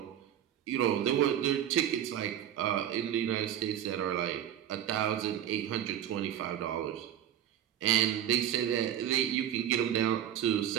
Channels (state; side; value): quieter; left; 10.7 dB